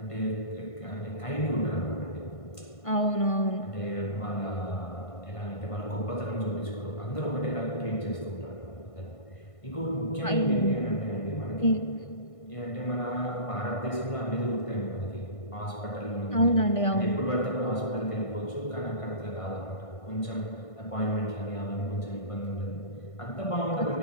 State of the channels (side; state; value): right; late; 1.5 ms